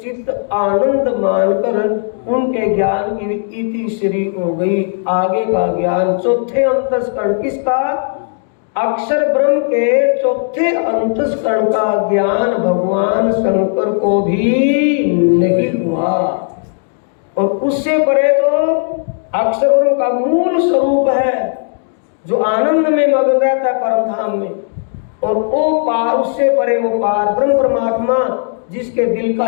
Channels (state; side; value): silent; right; 65 dB below the other